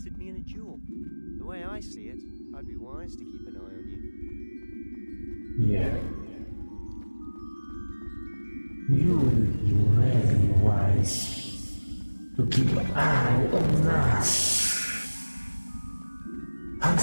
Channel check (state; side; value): inverted; both; correlation -1.00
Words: me in a duel. The way I see it, I'd be wise to keep an eye on you. Yeah. You will be very wise to keep an eye on us.